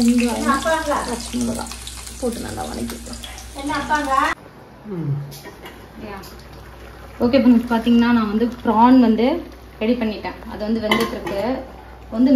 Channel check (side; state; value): both; identical; correlation 1.00